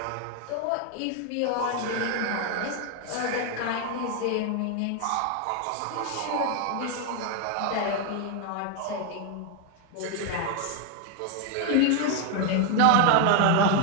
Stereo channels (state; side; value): different; both; correlation 0.01